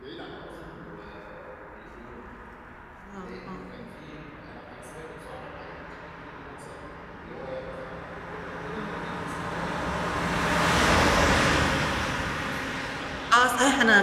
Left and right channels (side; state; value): both; identical; correlation 1.00